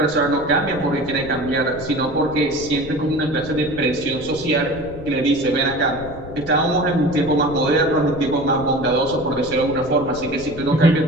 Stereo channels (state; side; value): noise; left; rumble, 14 dB below the sound